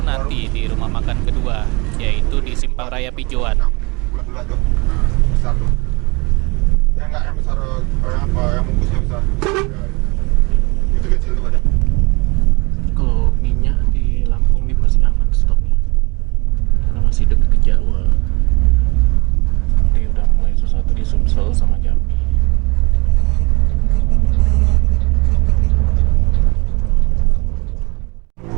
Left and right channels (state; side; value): quieter; left; 26.9 dB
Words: nanti di rumah makan kedua, yaitu di Simpang Raya Pijoan. Bulat-bulat tuh. Besar tuh. Yang enggak yang besar yang apa yang bungkusnya besar. Itu kecil tuh ada. Kalau minyak di Lampung ini masih aman stoknya karena masih dekat ke Jawa. Ini udah mulai sesuatu di Sumsel sama Jambi.